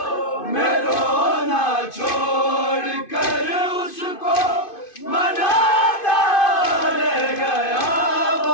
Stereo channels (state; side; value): late; right; 2.5 ms